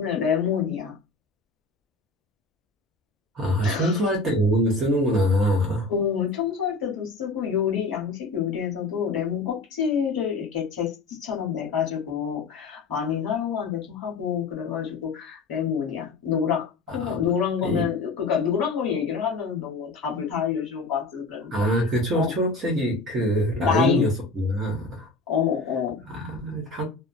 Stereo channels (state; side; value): quieter; right; 3.3 dB